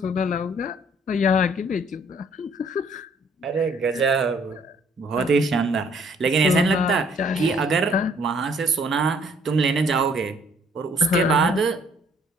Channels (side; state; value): both; normal; correlation 0.62